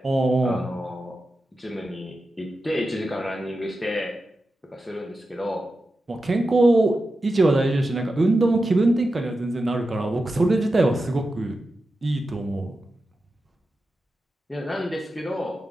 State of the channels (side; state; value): both; normal; correlation 0.91